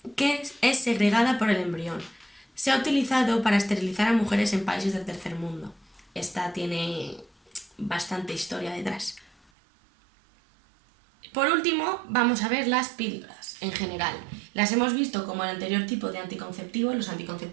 que es segregada por el embrión. Se ha utilizado para esterilizar a mujeres en países del tercer mundo. Esta tiene bastante historia detrás. Por último, vamos a ver las píldoras en general. Las hemos visto como el anterior tipo de anticonceptivo, los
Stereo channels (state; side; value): drops out; left; at 9.5 s